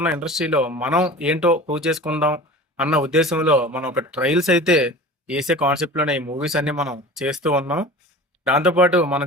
ఉన్న ఇండస్ట్రీలో మనం ఏంటో ప్రూవ్ చేసుకుందాం అన్న ఉద్దేశంలో మనం ఒక ట్రయల్స్ అయితే వేసే కాన్సెప్ట్లోనే ఈ మూవీస్ అన్ని మనం చేస్తూ ఉన్నాం. దాంతోపాటు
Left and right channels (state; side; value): normal; both; correlation 0.37